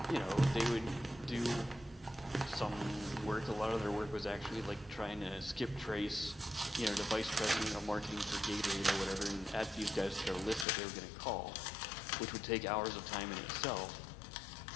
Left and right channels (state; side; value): drops out; right; at 10.7 s